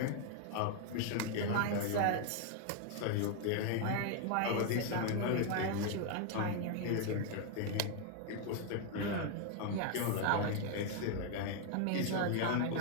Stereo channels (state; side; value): different; both; correlation 0.00